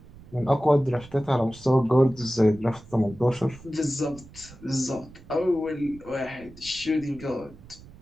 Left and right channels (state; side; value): noise; right; rumble, 20 dB below the sound